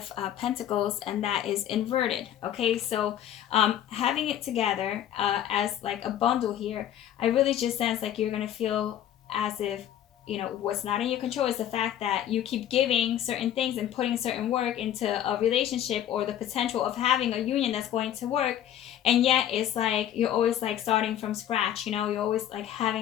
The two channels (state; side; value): quieter; right; 11.0 dB